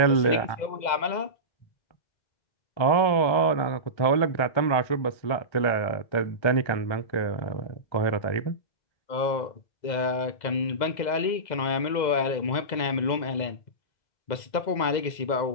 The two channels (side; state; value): right; late; 2.0 ms